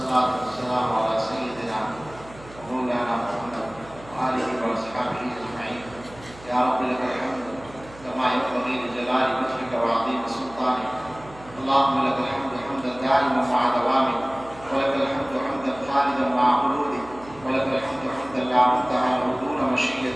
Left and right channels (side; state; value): right; noise; hum, 20 dB below the sound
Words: والصلاة والسلام على سيدنا ومولانا محمد وآله وأصحابه أجمعين. يا رب لك الحمد كما ينبغي لجلال وجهك وعظيم سلطانك. اللهم لك الحمد حمدا دائما مع دوامك، ولك الحمد حمدا خالدا مع خلودك، ولك الحمد حمدا لا منتهى له دون